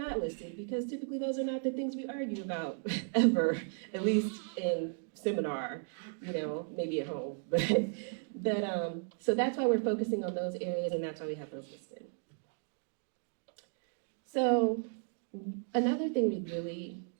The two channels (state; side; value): silent; left; 54 dB below the other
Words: listed because typically those are not the things we argue about ever, at least in seminar, you know, maybe at home. But so that's why we're focusing on those areas and that's why we have those listed. So another thing